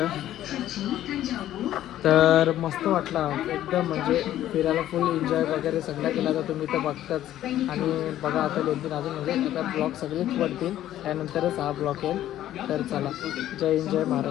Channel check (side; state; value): right; quieter; 12.7 dB